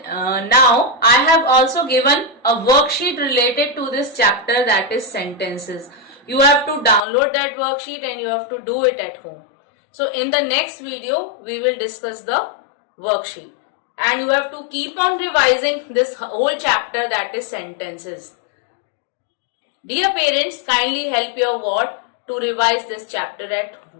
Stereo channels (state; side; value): drops out; right; at 7.0 s